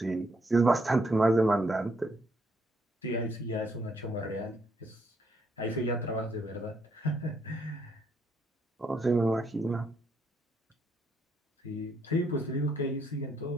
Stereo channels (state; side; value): normal; both; correlation 0.73